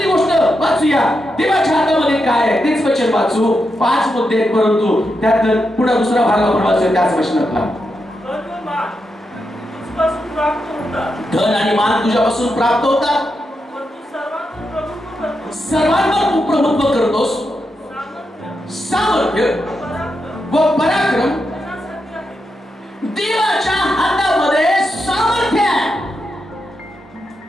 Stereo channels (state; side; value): normal; both; correlation 0.85